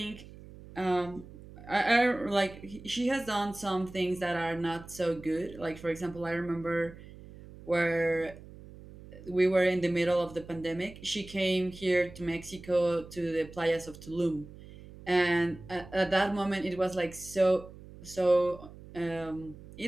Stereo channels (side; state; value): right; noise; hum, 17 dB below the sound